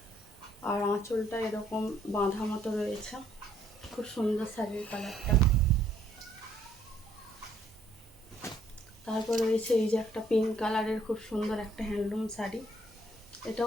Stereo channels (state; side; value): normal; both; correlation 0.66